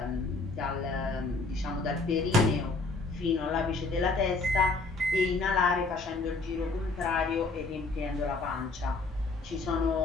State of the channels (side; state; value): right; quieter; 3.5 dB